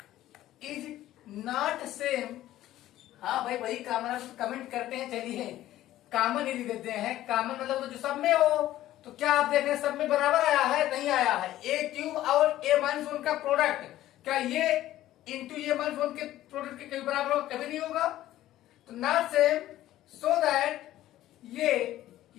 same। हाँ भाई वही कॉमन कमेंट करते हैं, चलिए कॉमन ही लिख देते हैं। कॉमन मतलब जो सब में हो, तो क्या आप देख रहे हैं सब में बराबर आया है, नहीं आया है। ए क्यूब और ए माइनस 1 का प्रोडक्ट, क्या ये इंटू ए माइनस 1 के प्रोडक्ट के कभी बराबर होगा, कभी नहीं होगा। तो नॉट सेम, सो दैट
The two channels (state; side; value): quieter; right; 14.1 dB